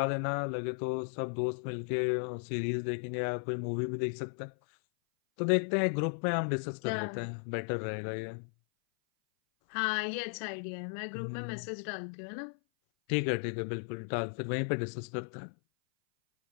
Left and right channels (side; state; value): right; silent; 54 dB below the other